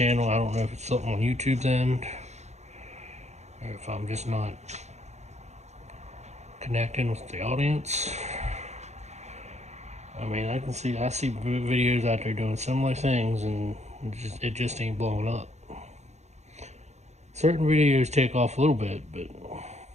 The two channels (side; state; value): left; late; 0.33 ms